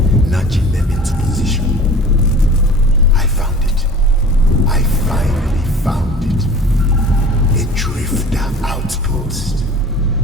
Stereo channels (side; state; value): both; normal; correlation 0.43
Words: nudging them into position, I found it. I finally found it. A drifter outpost.